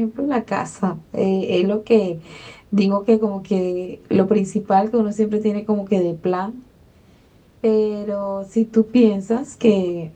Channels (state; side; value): identical; both; correlation 1.00